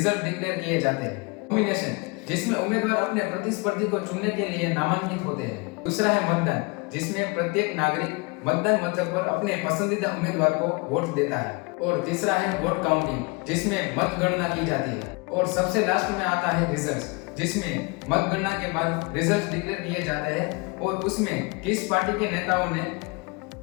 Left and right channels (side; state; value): right; quieter; 28.5 dB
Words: डिक्लेयर किए जाते हैं। नॉमिनेशन, जिसमें उम्मीदवार अपने प्रतिस्पर्धी को चुनने के लिए नामांकित होते हैं। दूसरा है मतदान, जिसमें प्रत्येक नागरिक मतदान मथक पर अपने पसंदीदा उम्मीदवार को वोट देता है। और तीसरा है वोट काउंटिंग, जिसमें मतगणना की जाती है। और सबसे लास्ट में आता है रिजल्ट, जिसमें मतगणना के बाद रिजल्ट डिक्लेयर किए जाते हैं और उसमें किस पार्टी के नेताओं ने